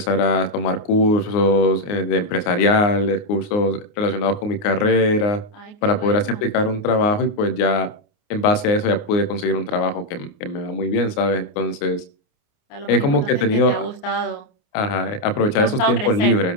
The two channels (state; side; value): late; right; 29 ms